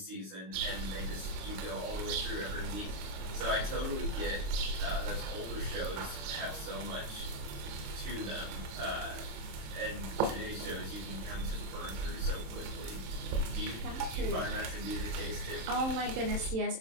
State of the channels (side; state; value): left; late; 27 ms